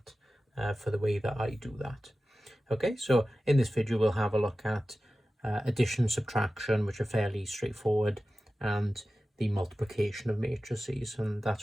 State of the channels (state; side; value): normal; both; correlation 0.95